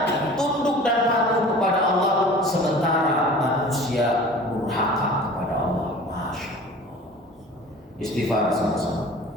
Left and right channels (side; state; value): both; normal; correlation 0.42